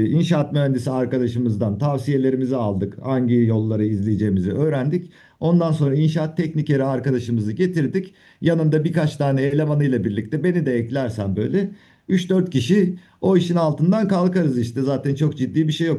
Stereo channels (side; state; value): both; identical; correlation 1.00